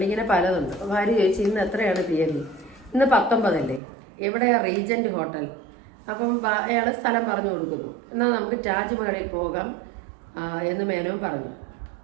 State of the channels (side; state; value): left; drops out; at 3.8 s